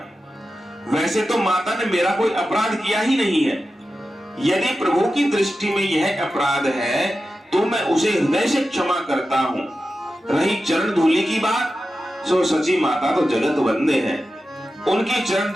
वैसे तो माता ने मेरा कोई अपराध किया ही नहीं है। यदि प्रभु की दृष्टि में यह अपराध है तो मैं उसे हृदय से क्षमा करता हूं। रही चरण धूलि की बात, सो सची माता तो जगत वंदे हैं। उनकी चरण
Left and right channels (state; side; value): normal; both; correlation 0.92